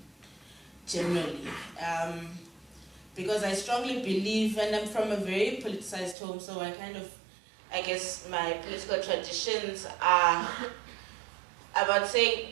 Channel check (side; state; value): left; drops out; at 6.2 s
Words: generally. Because I strongly believe, and I'm from a very politicized home, so I guess my political traditions are about